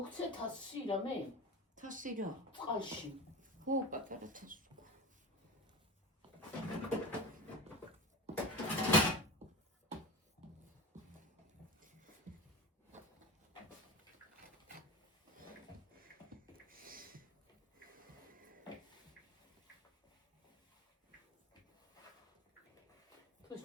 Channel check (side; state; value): both; normal; correlation 0.27